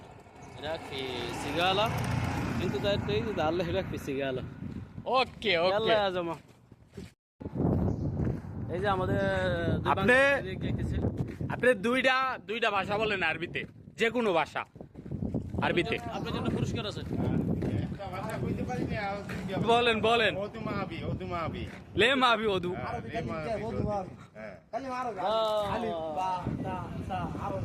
هناك في سيجالة. انتوا تريدوا تعالوا هناك في سيجالة. ওকে يلا ওকে يا زلمة এই যে আমাদের আপনি দুইটা ভাষা বলেন আরবিতে, যে কোনো ভাষা আরবিতে আপনার জন্য পুরস্কার আছে। বলেন বলেন। লে মাবি ওদু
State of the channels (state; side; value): identical; both; correlation 1.00